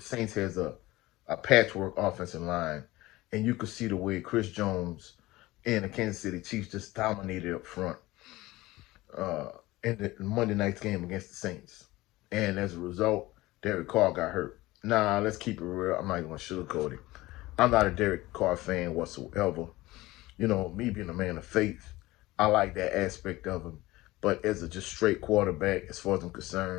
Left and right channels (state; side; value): quieter; right; 18.9 dB